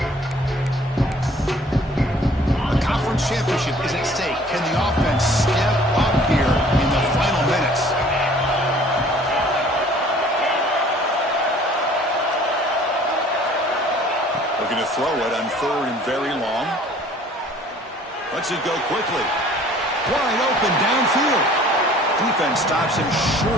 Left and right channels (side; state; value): both; normal; correlation 0.53